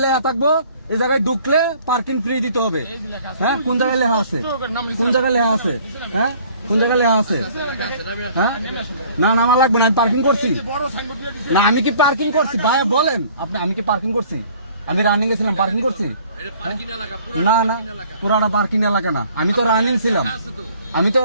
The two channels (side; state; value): both; inverted; correlation -0.54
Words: লেখা থাকবো এই জায়গায় ঢুকলে পার্কিং ফ্রি দিতে হবে। হ্যাঁ কোন জায়গায় লেখা আছে? কোন জায়গায় লেখা আছে? হ্যাঁ কোন জায়গায় লেখা আছে? হ্যাঁ না না আমার লাগবে না, আমি পার্কিং করছি না। আমি কি পার্কিং করছি ভাই বলেন আপনি? আমি কি পার্কিং করছি? আমি রানিং গেছিলাম, পার্কিং করছি? না না পুরাটা পার্কিং এলাকা না, আমি তো রানিং ছিলাম। আমি তো